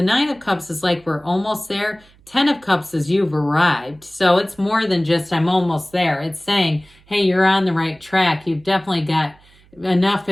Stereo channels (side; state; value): right; noise; hum, 29 dB below the sound